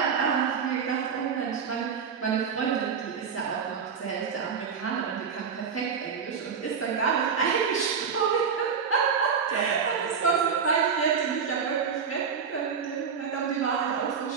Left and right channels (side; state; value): left; quieter; 6.4 dB